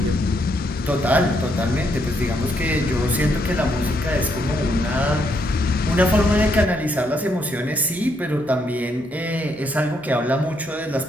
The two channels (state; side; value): normal; both; correlation 0.75